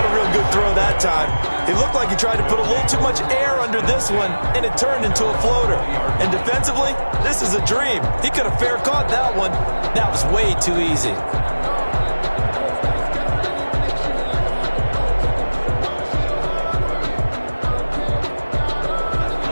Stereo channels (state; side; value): inverted; both; correlation -1.00